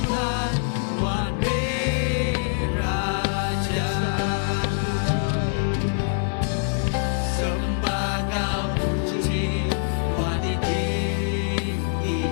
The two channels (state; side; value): silent; right; digital silence